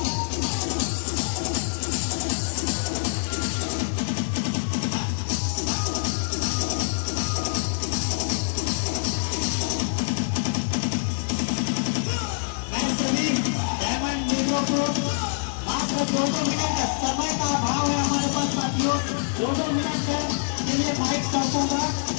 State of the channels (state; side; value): silent; right; digital silence